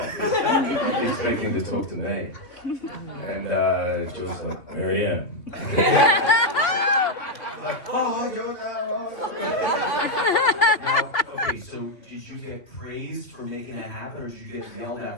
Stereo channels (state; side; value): late; right; 2.6 ms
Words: this, expecting to talk to me. And George's like, Marianne. Like, oh, George, Okay, so did you get praised for making that happen, or did you get yelled